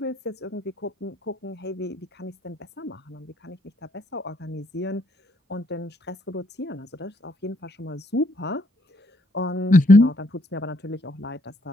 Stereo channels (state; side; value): normal; both; correlation 0.69